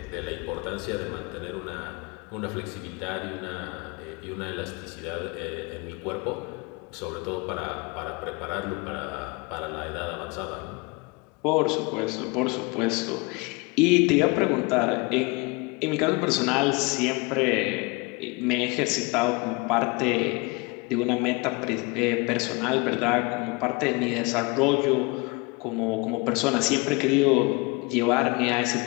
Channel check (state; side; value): quieter; right; 27.5 dB